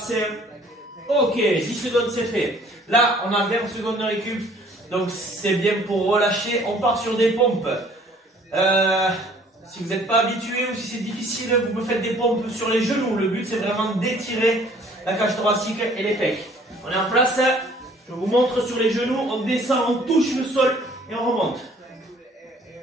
Ok, 10 secondes, c'est fait. Là, on a 20 secondes de récup. Donc, c'est bien pour relâcher. On part sur des pompes. Si vous n'êtes pas habitué ou si c'est difficile, vous me faites des pompes sur les genoux. Le but, c'est vraiment d'étirer la cage thoracique et les pecs. On est en place. Je vous montre sur les genoux. On descend, on touche le sol et on remonte.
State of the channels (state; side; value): normal; both; correlation 0.56